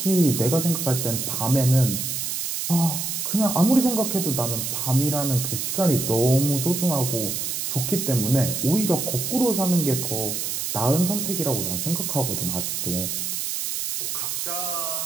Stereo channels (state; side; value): noise; right; hiss, 2 dB below the sound